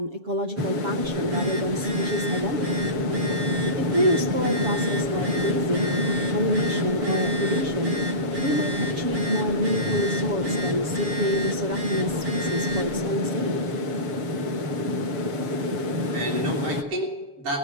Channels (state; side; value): late; left; 7.2 ms